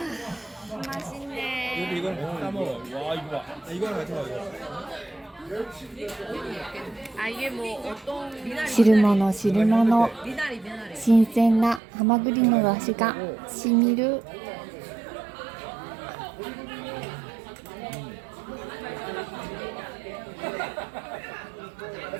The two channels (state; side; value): drops out; left; at 11.8 s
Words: 맛있네. 이거는 같이 싸 먹어. 와 이거 봐. 이거랑 같이 먹어. 아, 이게 뭐 어떤 汁物汁物、 미나리. 新鮮なハマグリの出汁がしみる。